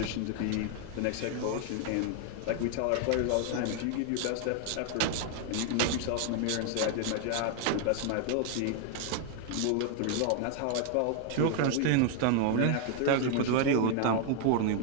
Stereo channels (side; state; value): both; different; correlation 0.00